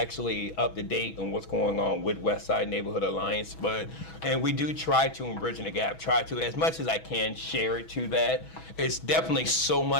up to date and what's going on with Westside Neighborhood Alliance. And we do try to, in Bridging the Gap, try to, as much as I can, share it to that. It's definitely so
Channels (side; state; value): right; late; 6.2 ms